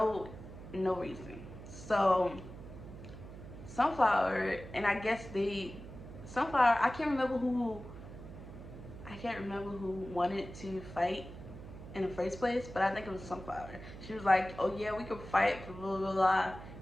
no reason. So Sunflower, and I guess Sunflower, I can't remember who wanted to fight in the first place, but I think it was Sunflower. She was like, "Oh yeah, we could fight, blah blah blah,"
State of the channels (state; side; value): noise; right; hum, 13 dB below the sound